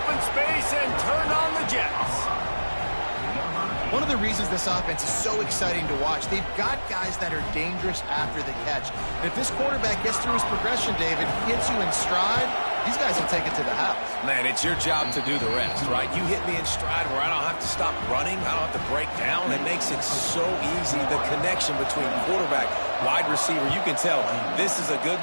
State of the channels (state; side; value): inverted; both; correlation -1.00